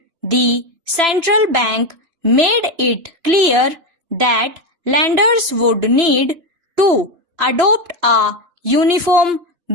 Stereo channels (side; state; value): left; late; 2.9 ms